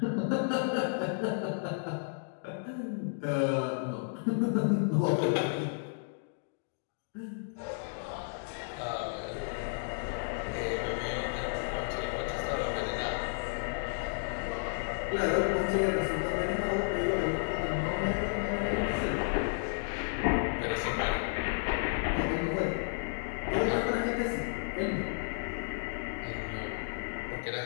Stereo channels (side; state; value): right; silent; digital silence